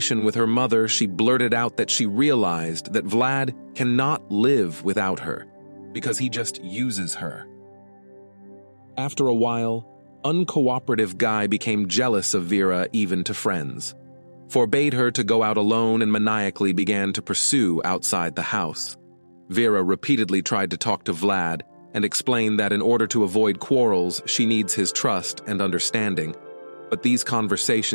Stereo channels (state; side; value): inverted; both; correlation -1.00